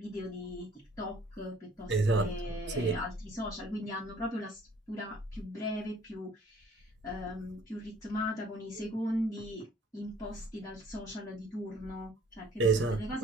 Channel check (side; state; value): both; normal; correlation 0.56